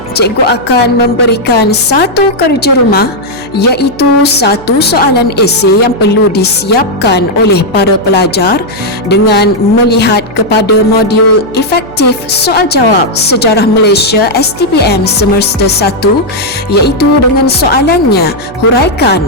cikgu akan memberikan satu kerja rumah, iaitu satu soalan esei yang perlu disiapkan oleh para pelajar dengan melihat kepada modul efektif soal jawab Sejarah Malaysia STPM semester 1, iaitu dengan soalannya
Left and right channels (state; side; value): noise; right; hum, 19 dB below the sound